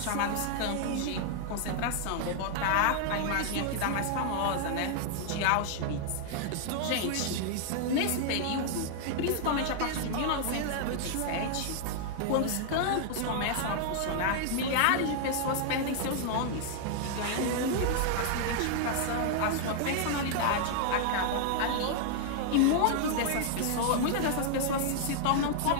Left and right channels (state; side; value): different; both; correlation -0.01